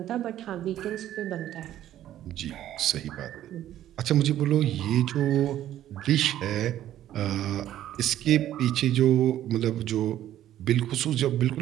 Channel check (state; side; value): quieter; left; 12.3 dB